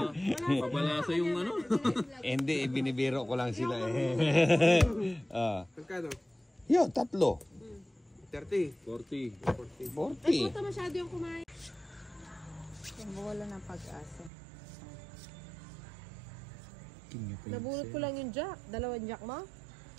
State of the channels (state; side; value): drops out; left; at 14.3 s